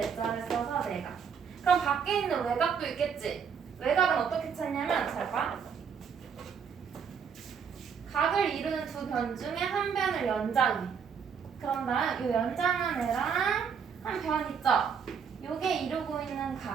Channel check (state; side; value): quieter; left; 6.8 dB